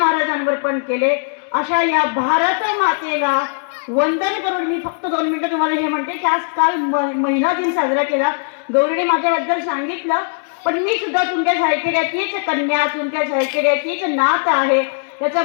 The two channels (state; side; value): silent; right; digital silence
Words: पण केले. अशा या भारत मातेला वंदन करून मी फक्त 2 मिनिटं तुम्हाला हे म्हणते की आज काल महिला दिन साजरा केला. गौरीने माझ्याबद्दल सांगितलं, पण मी सुद्धा तुमच्या सायकेड्याचीच कन्या, तुमच्या सायकेड्याचीच नात आहे. त्याचा